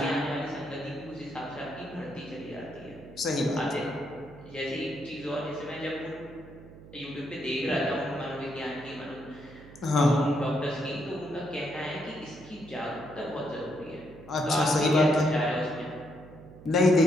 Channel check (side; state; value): right; noise; hum, 18 dB below the sound